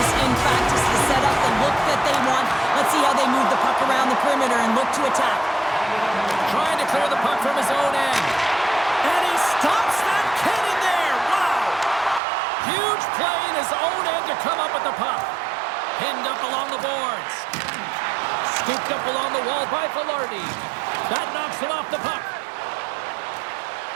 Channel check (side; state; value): left; drops out; at 12.2 s